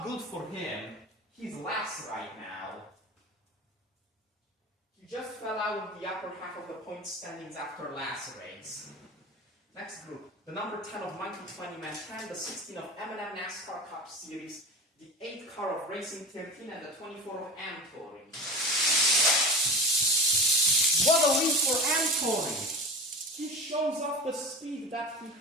good for him. He's last right now. He just fell out of the upper half of the point standings after last race. Next group, the number 10 of Monkey 20 Man 10, the 16 of M&M NASCAR Cup Series, the 8 car of Racing 13, and the 24 of Tori. What a lead for Tori! He shows off the speed that he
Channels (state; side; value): normal; both; correlation 0.31